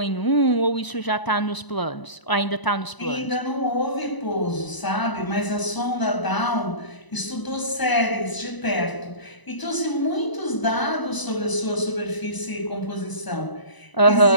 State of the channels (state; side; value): late; right; 1.0 ms